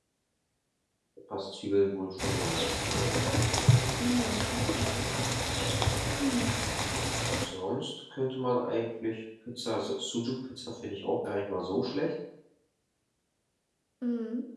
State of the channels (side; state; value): both; identical; correlation 1.00